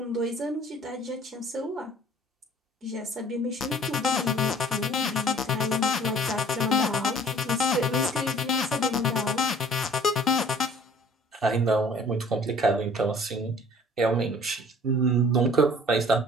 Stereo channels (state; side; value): normal; both; correlation 0.51